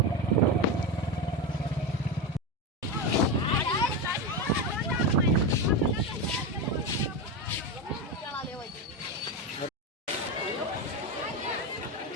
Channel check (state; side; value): normal; both; correlation 0.16